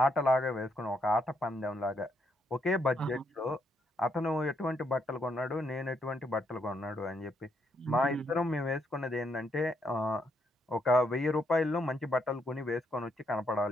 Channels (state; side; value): normal; both; correlation 0.76